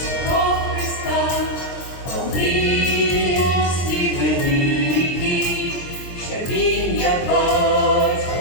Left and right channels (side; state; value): right; late; 23 ms